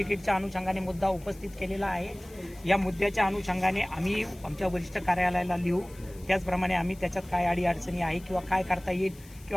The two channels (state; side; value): noise; left; hiss, 23 dB below the sound